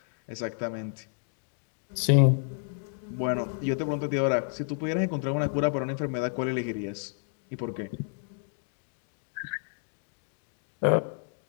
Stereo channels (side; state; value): right; silent; 58 dB below the other